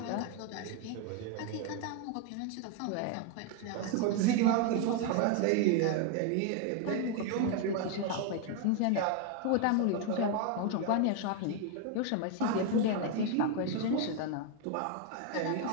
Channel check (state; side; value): different; both; correlation 0.01